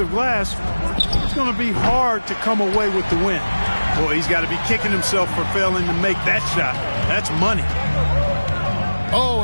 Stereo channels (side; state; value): both; inverted; correlation -1.00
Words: glass, it's going to be hard to come away with the win. Boy, he's got to be kicking himself for failing to make that shot. That's money. Oh,